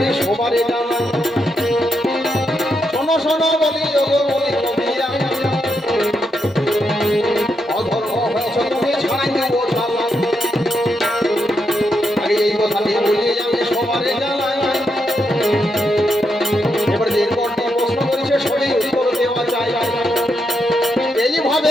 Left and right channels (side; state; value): both; normal; correlation 0.82